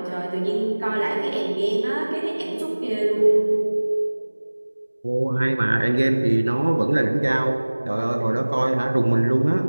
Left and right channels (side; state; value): both; inverted; correlation -1.00